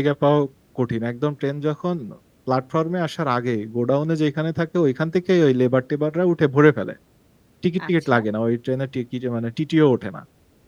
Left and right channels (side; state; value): both; identical; correlation 1.00